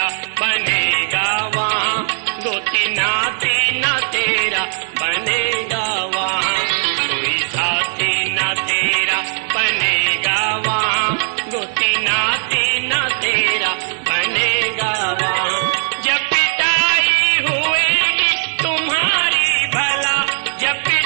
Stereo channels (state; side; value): silent; left; digital silence